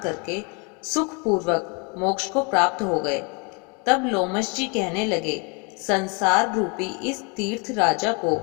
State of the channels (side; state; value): right; quieter; 32.3 dB